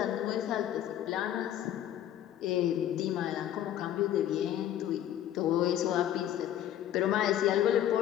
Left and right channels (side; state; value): right; quieter; 11.4 dB